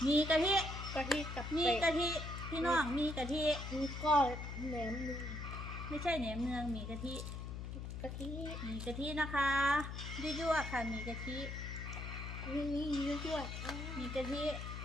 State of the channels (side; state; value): left; noise; hum, 6 dB below the sound